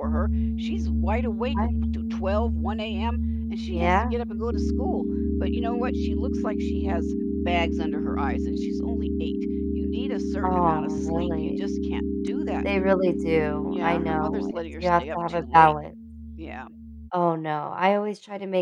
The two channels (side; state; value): both; identical; correlation 1.00